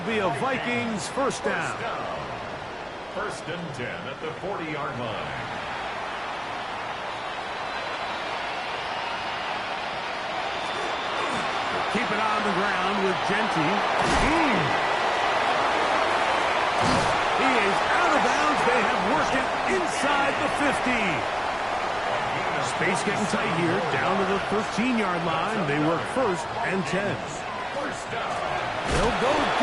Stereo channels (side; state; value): both; identical; correlation 1.00